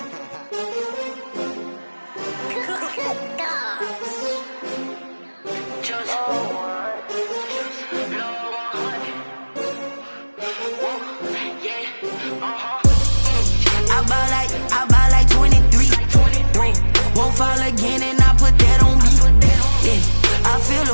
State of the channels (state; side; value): inverted; both; correlation -1.00